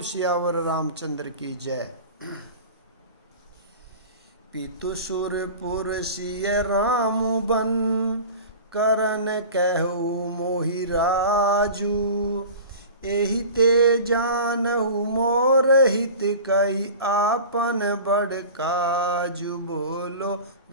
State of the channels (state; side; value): inverted; both; correlation -0.37